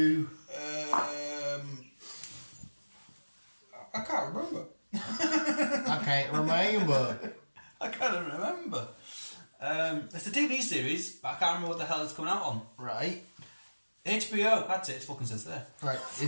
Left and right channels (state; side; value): inverted; both; correlation -1.00